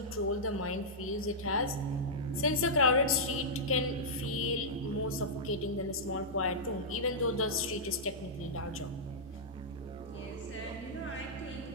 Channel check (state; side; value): normal; both; correlation -0.12